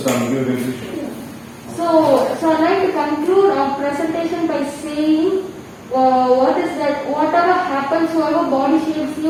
give a conclusion. So I'd like to conclude our presentation by saying what is that whatever happens, whoever body shames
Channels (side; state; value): both; identical; correlation 1.00